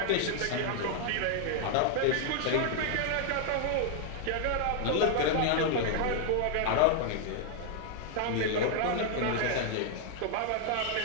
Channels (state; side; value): different; both; correlation 0.00